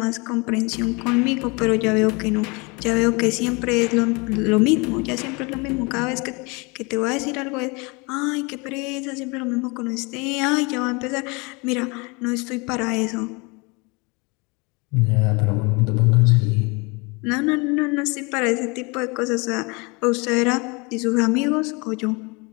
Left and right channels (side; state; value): right; quieter; 28.2 dB